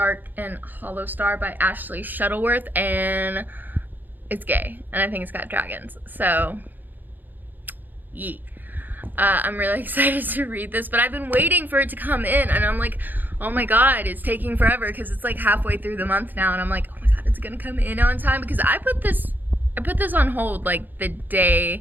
and Hollow Star by Ashley Shuttleworth, and it's gay, and I think it's got dragons. So, yeet. I'm really excited to read this, but I've been waiting for it to come in, and I'm like, oh my god, it's taking forever because it's like halfway through the month now, and I'm like, oh my god, it's gonna come in on time, because I put this on hold like the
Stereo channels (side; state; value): left; late; 0.087 ms